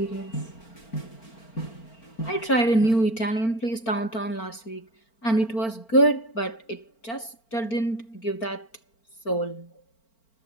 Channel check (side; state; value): right; late; 4.4 ms